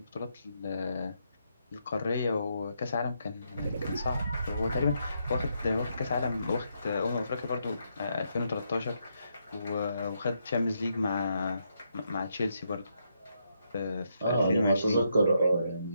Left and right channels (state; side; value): inverted; both; correlation -0.79